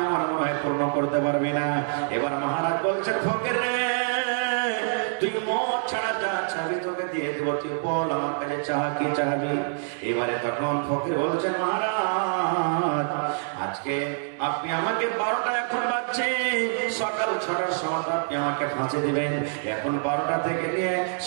আমার মনে হয় পূর্ণ করতে পারবে না। এবার মহারাজ বলছেন, ফকির রে তুই মত ছাড়া যা চাবি তোকে দিয়ে দেবো, তুই বল আমার কাছে চাহ কি চাবি। এবারে তখন ফকির বলছেন, মহারাজ আজকে আপনি আমাকে 12টা এখন বাজছে, সকাল 6টার সময় আপনি আমাকে ফাঁসি দিবেন। এখন 12টা থেকে নিয়ে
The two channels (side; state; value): left; silent; digital silence